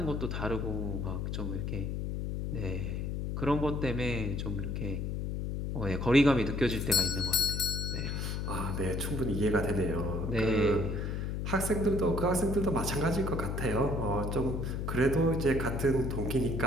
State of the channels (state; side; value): noise; left; hum, 2 dB below the sound